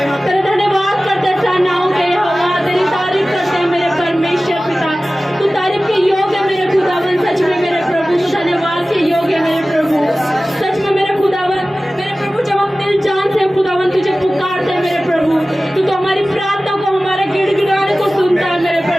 तेरा धन्यवाद करते सेनाओं के यहोवा, तेरी तारीफ करते हैं मेरे परमेश्वर पिता। तू तारीफ के योग्य है मेरे खुदावन, सच में मेरे प्रभु, तू धन्यवाद के योग्य है मेरे प्रभु, सच में मेरे खुदावन। मेरे प्रभु, जब हम दिल जान से खुदावन तुझे पुकारते हैं मेरे प्रभु, तो हमारी प्रार्थना को, हमारे गिड़गिड़ाने को सुनता है मेरे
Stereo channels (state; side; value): normal; both; correlation 0.96